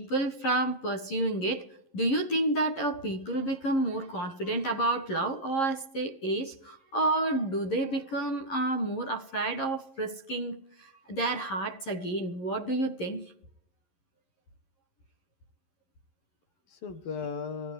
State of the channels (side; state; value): right; late; 11 ms